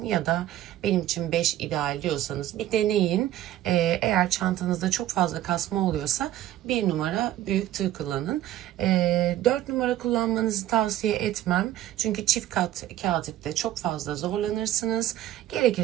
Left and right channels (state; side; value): quieter; left; 13.2 dB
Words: ya da benim için 5 ideal diyorsanız bir deneyin. Eğer çantanızda çok fazla kasma oluyorsa 1 numara büyük tığ kullanın. 4 numara kullanmanızı tavsiye etmem. Çünkü çift kat kağıt ipte çok fazla zorlanırsınız.